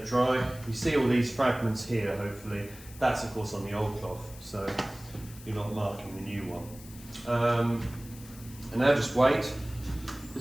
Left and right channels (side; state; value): left; noise; hiss, 19 dB below the sound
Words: dry. You see all these fragments here, hopefully. That's of course on the old cloth, so you're not marking the new one. And now just wait.